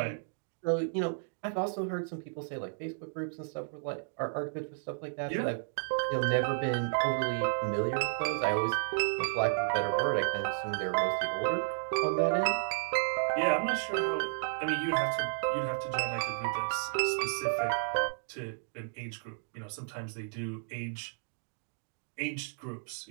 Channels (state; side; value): silent; left; digital silence